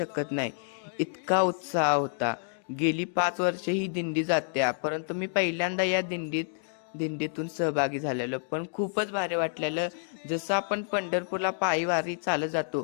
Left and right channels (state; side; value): silent; right; digital silence